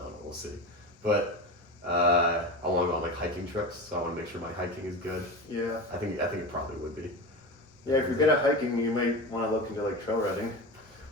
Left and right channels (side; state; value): both; normal; correlation 0.26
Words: know, we'll see. But I want to go on like hiking trips, so I want to make sure my hiking is good. Yeah. I think it probably would be. Yeah, if you're good at hiking, you might want to look into like trail running.